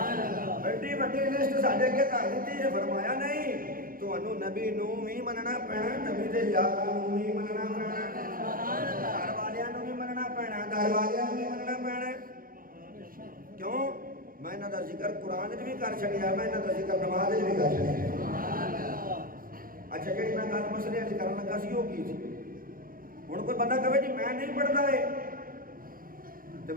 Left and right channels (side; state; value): left; late; 0.41 ms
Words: बड़ी बड़ी लिस्ट साढ़े अगे कर दी है। फरमाया नहीं, तुहानू नबी नू भी मनना पैना, नबी दे यार नू भी मनना पैना, घर वालियां नू भी मनना पैना, घर वालियां नू भी मनना पैना। क्यों? मैं इन्हां दा जिक्र कुरान च भी कर छड़िया, मैं इन्हां दा जिक्र नमाज च भी कर छड़िया। अच्छा जी मैं गल मसले अज करन लगा सी, की थी हुण कोई बंदा कहे जी मैं नहीं पढ़ता है तो